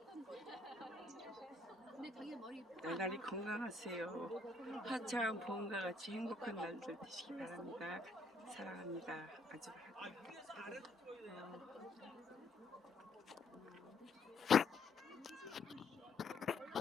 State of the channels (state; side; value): quieter; right; 3.1 dB